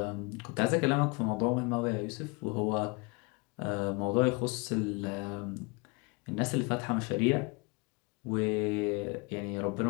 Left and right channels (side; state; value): right; quieter; 29.1 dB